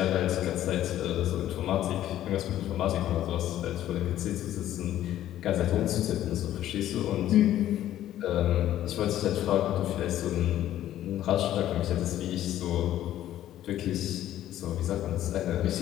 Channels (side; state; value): right; quieter; 12.6 dB